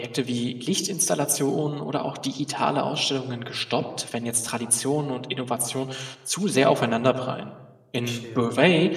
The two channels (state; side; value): identical; both; correlation 1.00